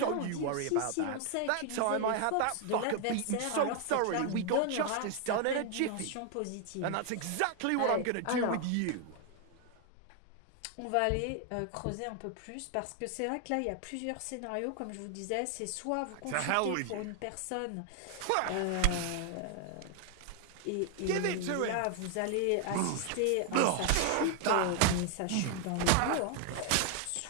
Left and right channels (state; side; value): different; both; correlation 0.00